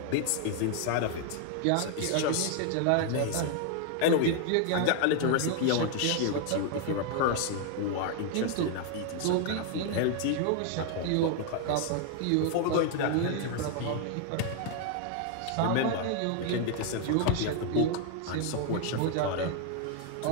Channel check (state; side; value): different; both; correlation 0.00